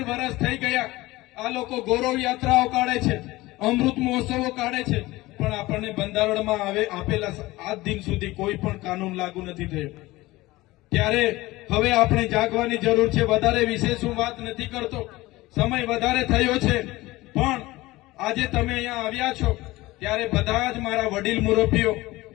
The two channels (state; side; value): quieter; right; 19.3 dB